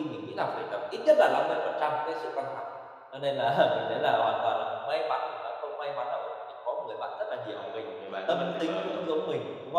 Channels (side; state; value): both; identical; correlation 1.00